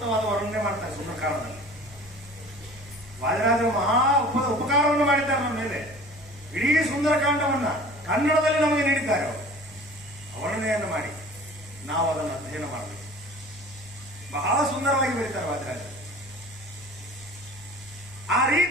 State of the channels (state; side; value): normal; both; correlation 0.43